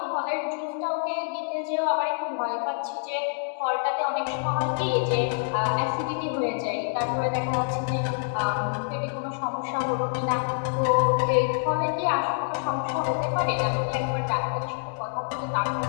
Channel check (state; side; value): silent; right; digital silence